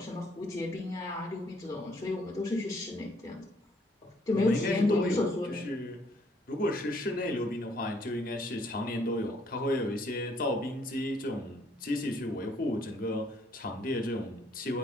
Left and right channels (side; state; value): both; normal; correlation 0.66